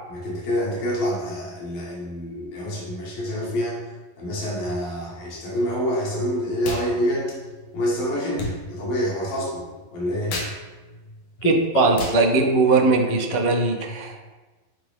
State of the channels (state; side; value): late; right; 11 ms